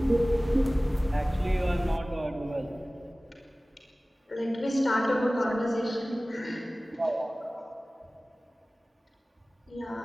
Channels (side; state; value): both; normal; correlation 0.98